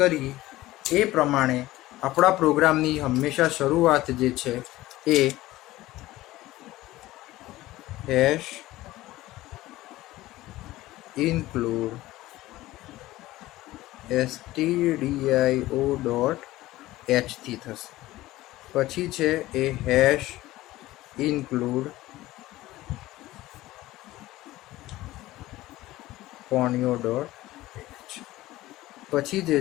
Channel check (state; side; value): quieter; right; 17.0 dB